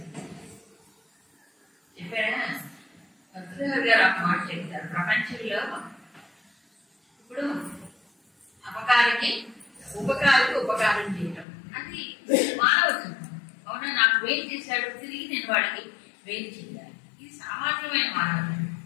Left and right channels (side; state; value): right; drops out; at 11.5 s